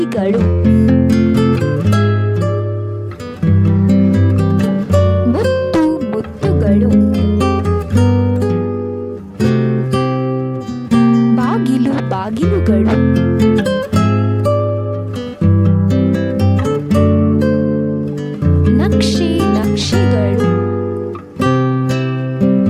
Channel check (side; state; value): both; identical; correlation 1.00